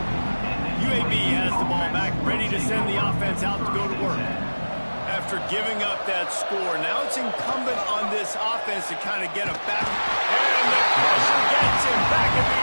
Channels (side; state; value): both; inverted; correlation -1.00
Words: UAB has the ball back, ready to send the offense out to go to work. After giving up that score, now it's incumbent on this offense to kind of get it back. And the pressure gets him back at the